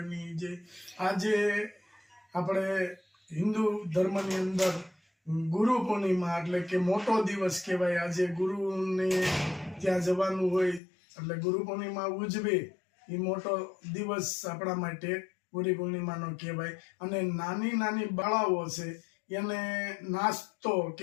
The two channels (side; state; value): right; drops out; at 10.8 s